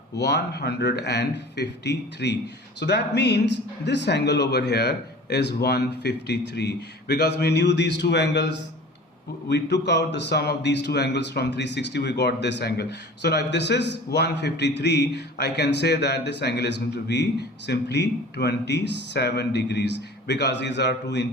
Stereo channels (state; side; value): normal; both; correlation 0.42